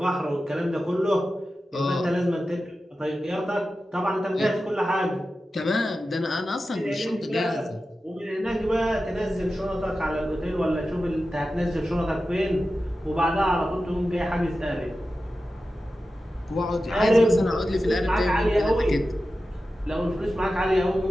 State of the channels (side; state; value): both; normal; correlation 0.93